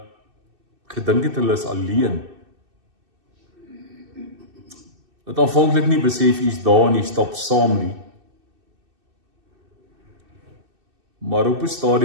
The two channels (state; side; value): late; left; 2.6 ms